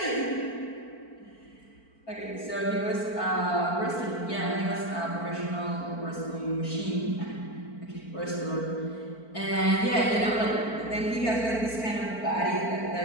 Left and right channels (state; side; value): late; right; 4.5 ms